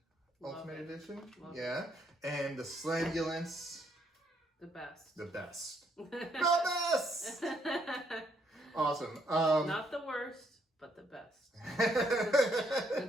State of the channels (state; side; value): normal; both; correlation 0.71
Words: Love Ultimate it. Edition. Love yeah. And the Slambulance. The best. The best. The best! Awesome. Not the worst, but the best.